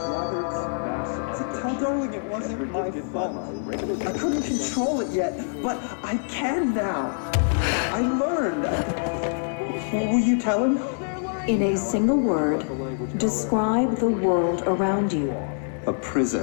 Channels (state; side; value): silent; right; 62 dB below the other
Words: Tell Darling it wasn't my fault. I couldn't control it yet, but I can now. I learned. What will you tell him? In a single word, describe the world around you. A